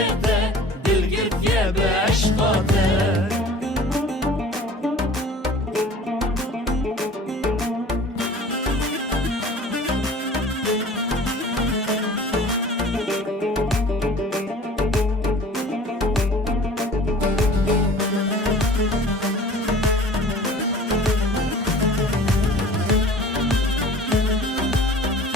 دل گرتیه به عشقاته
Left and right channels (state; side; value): normal; both; correlation 0.45